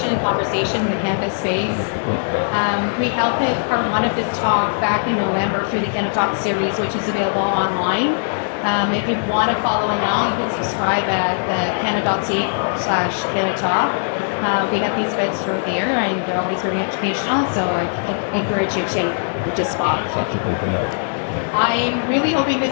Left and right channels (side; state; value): right; silent; digital silence